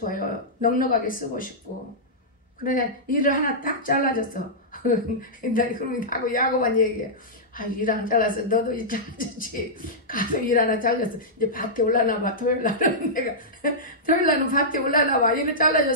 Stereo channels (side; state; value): both; normal; correlation -0.13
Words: 넉넉하게 쓰고 싶고. 그래 일을 하나 딱 잘라줬어. 그러면 하고 야고만 얘기해. 일 하나 잘랐어. 너도 일 잘라줬지. 가서 일 하나 잘랐어. 이제 밭에 올라나 봐. 토요일날은 내가 토요일날은 밭에 올라나 봐. 일을